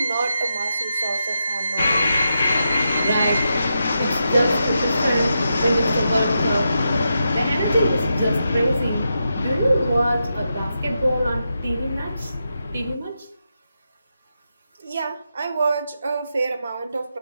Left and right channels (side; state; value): both; inverted; correlation -0.86